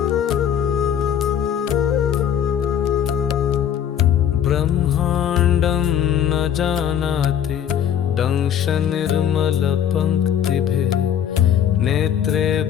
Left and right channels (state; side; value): quieter; right; 9.4 dB